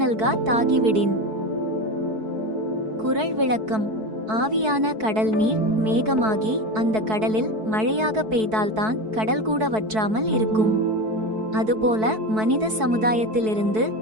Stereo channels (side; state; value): left; late; 4.6 ms